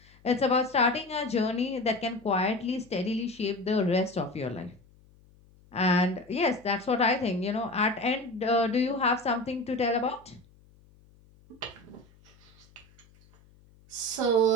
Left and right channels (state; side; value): noise; left; hum, 28 dB below the sound